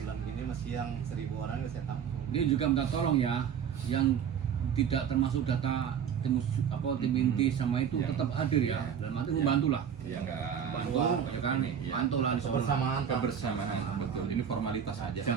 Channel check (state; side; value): quieter; left; 8.1 dB